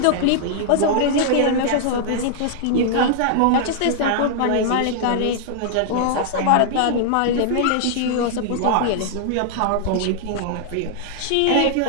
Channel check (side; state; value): both; different; correlation -0.01